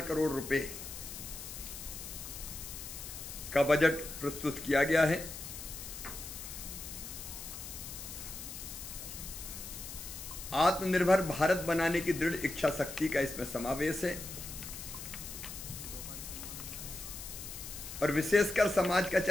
करोड़ रुपए का बजट प्रस्तुत किया गया है। आत्मनिर्भर भारत बनाने की दृढ़ इच्छा शक्ति का इसमें समावेश है और विशेषकर समाज का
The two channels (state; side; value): noise; left; hiss, 10 dB below the sound